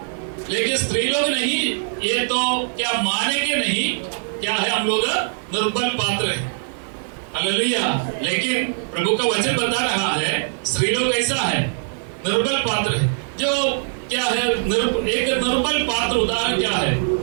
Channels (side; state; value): left; silent; 62 dB below the other